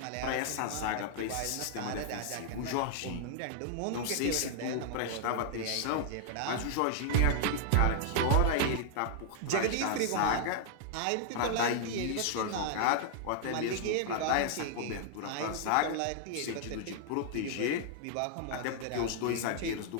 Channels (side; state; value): both; different; correlation -0.01